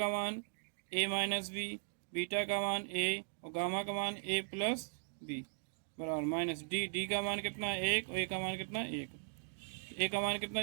मान ए माइनस बी, बीटा का मान ए और गामा का मान ए प्लस बी बराबर माइनस डी। डी का मान कितना एक और ए का मान कितना एक, ए का मान कितना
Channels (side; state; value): left; silent; digital silence